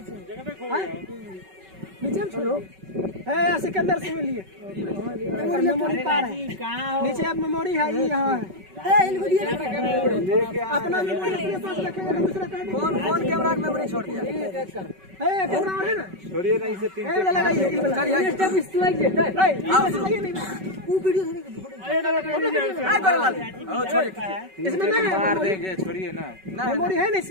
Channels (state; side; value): late; left; 5.3 ms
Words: नीचे में छोड़ो है, सिकंदर से मिलिए। मेमोरी पार है, नीचे अब मेमोरी है, ये यहाँ है। अपना मेमोरी अपने पास रखेंगे तो दूसरा कौन कैमरा में मेमोरी छोड़ दिया है? कैमरा है ना, छोड़िए ना, इसे 3 लगाइए। इसमें नहीं मार देंगे, छोड़िए ना। मेमोरी है ना